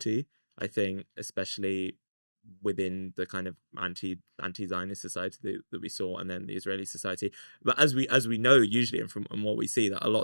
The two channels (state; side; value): inverted; both; correlation -1.00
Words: I think, especially within the kind of anti-Zionist society that we saw, and then the Israeli society. But as we know, usually, and from and what we see, that a